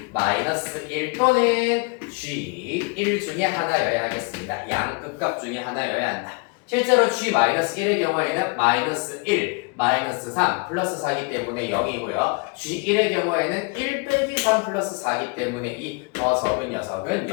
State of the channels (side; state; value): right; quieter; 30.8 dB